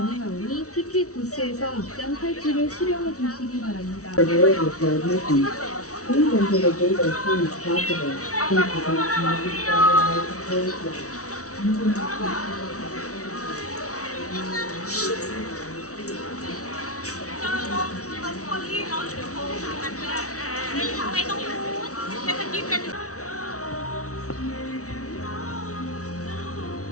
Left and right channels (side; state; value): right; late; 0.65 ms